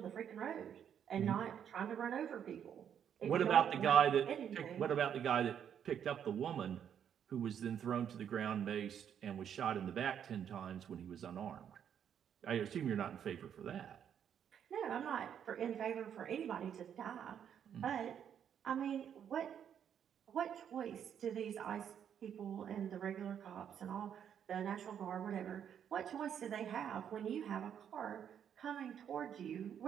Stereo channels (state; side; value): quieter; left; 8.8 dB